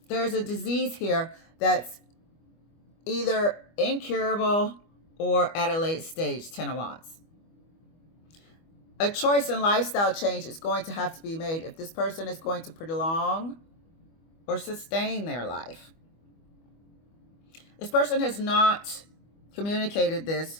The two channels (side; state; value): right; late; 25 ms